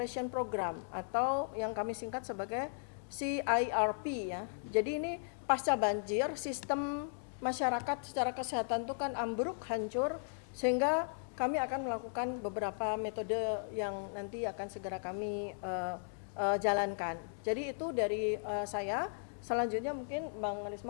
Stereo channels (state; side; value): silent; right; digital silence